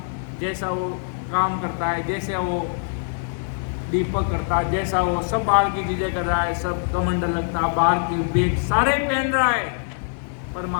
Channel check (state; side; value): silent; right; digital silence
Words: जैसा वो काम करता है, जैसे वो दीपक करता है, जैसा वो सब बाहर की चीजें कर रहा है, सब कमंडल लगता है, बाहर के वेग सारे पहन रहा है, पर